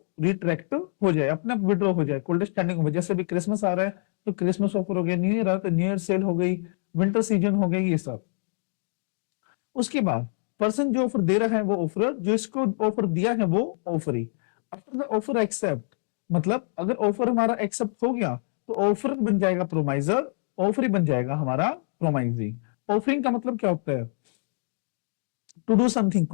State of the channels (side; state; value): right; silent; digital silence